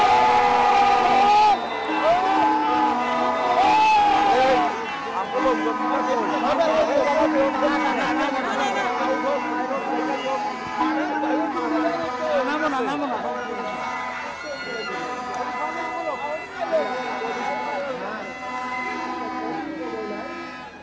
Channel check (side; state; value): both; identical; correlation 1.00